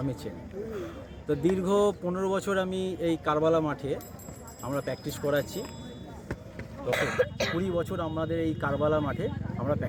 চেনে। তো দীর্ঘ 15 বছর আমি এই কারবালা মাঠে আমরা প্র্যাকটিস করাচ্ছি। তো 20 বছর আমাদের এই কারবালা মাঠে আমরা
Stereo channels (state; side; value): identical; both; correlation 1.00